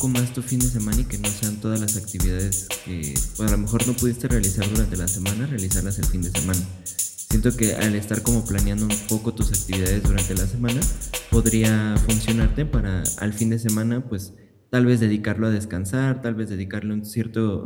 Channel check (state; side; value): identical; both; correlation 1.00